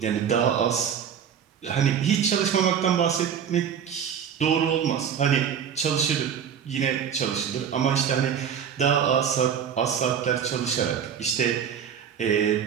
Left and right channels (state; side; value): quieter; left; 8.1 dB